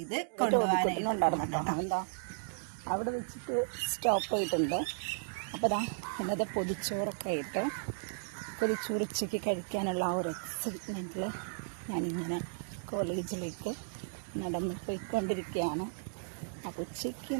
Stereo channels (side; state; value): left; silent; digital silence